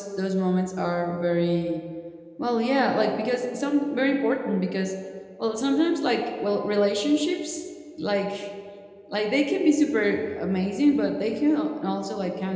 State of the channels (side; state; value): both; identical; correlation 1.00